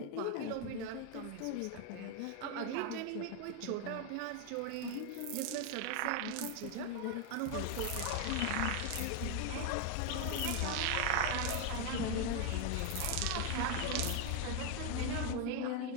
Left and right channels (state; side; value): different; both; correlation 0.01